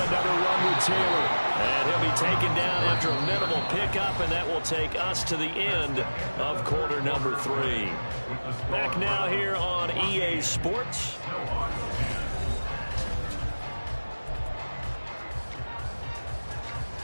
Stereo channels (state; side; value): inverted; both; correlation -1.00